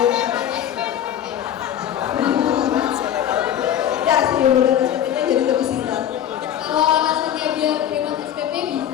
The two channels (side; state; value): right; quieter; 10.4 dB